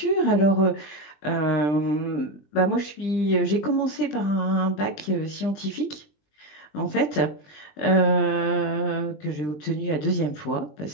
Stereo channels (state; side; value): late; right; 20 ms